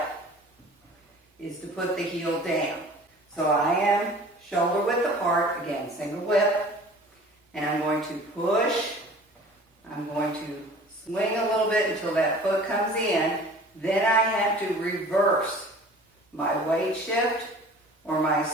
is to put the heel down. So I am shoulder width apart, again, single whip, and I'm going to push. I'm going to swing a little bit until that foot comes in. Then I have to reverse my weight shift or my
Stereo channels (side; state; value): both; normal; correlation 0.45